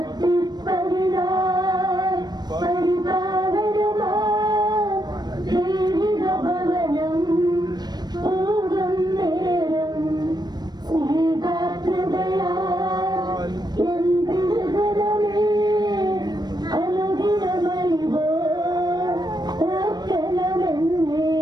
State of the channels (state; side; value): late; left; 0.20 ms